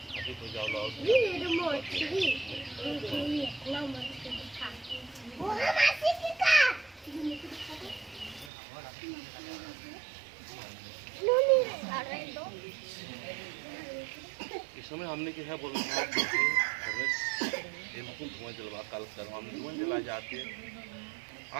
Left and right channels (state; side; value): drops out; left; at 8.5 s